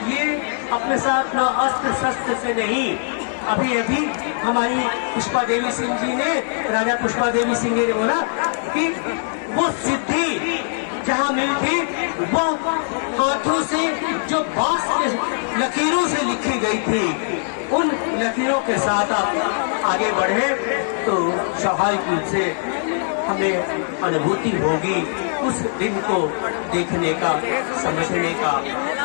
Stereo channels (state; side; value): silent; right; 65 dB below the other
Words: ये अपने साथ न अस्त्र शस्त्र से नहीं, अभी हमारी पुष्पा देवी सिंह जी ने, राजा पुष्पा देवी सिंह ने बोला कि वो सिद्धि जहाँ मिली थी वो हाथों से जो बांस के लकीरों से लिखी गई थी, उन लकीरों के साथ आप आगे बढ़े तो स्वाभाविक रूप से हमें अनुभूति होगी उस दिन को देखने का, समझने का।